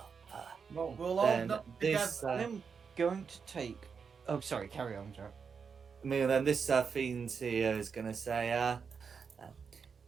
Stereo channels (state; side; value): quieter; left; 6.0 dB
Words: Well, We'll all Then knock this, together. I'm going to take. Oh, sorry. Carry on, Joe. then this fiend here is gonna say,